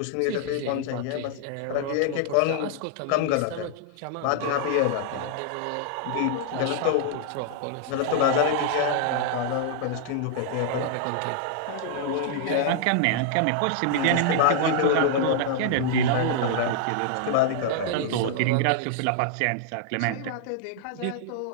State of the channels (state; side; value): different; both; correlation -0.01